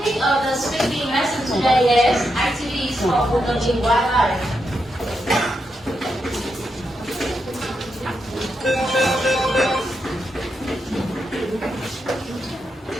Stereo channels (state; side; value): normal; both; correlation 0.84